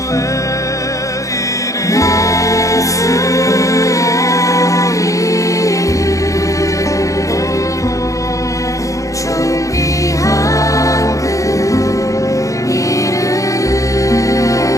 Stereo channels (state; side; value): late; right; 0.16 ms